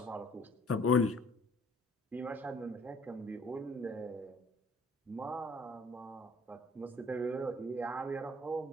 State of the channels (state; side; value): normal; both; correlation 0.57